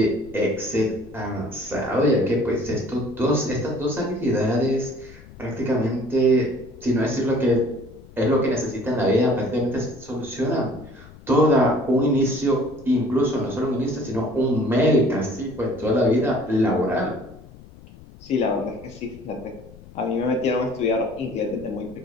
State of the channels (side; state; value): left; noise; rumble, 20 dB below the sound